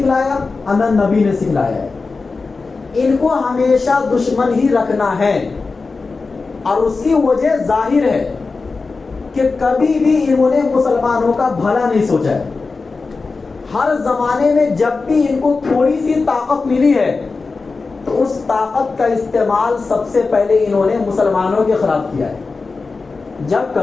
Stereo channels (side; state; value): right; quieter; 4.1 dB